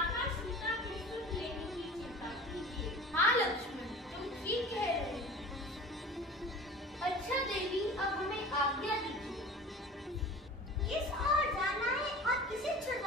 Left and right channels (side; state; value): both; normal; correlation 0.40